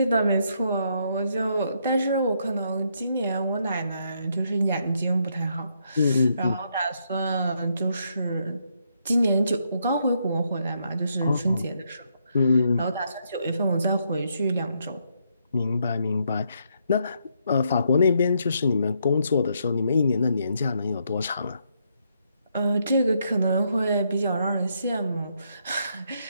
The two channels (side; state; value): both; inverted; correlation -0.76